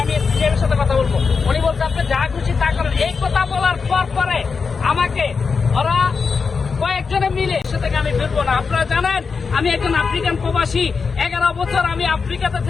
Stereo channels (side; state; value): right; quieter; 5.2 dB